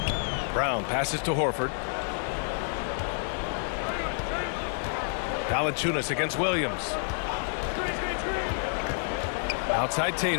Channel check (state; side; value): silent; right; 59 dB below the other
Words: Brown passes to Horford. Valanciunas against Williams. Outside